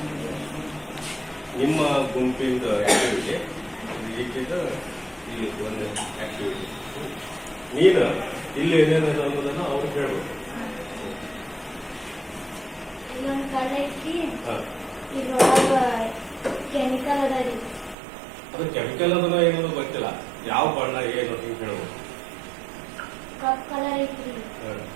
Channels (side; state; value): left; drops out; at 17.9 s